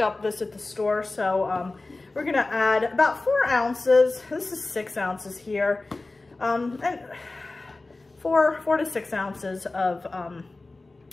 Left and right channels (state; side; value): quieter; right; 3.2 dB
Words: this at the store. So we're gonna add about 4 ounces. This is 6 ounces here. And 4 to 6 ounces of